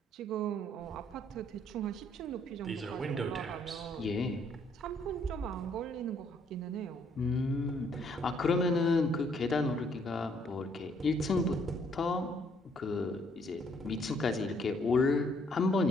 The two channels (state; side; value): normal; both; correlation 0.67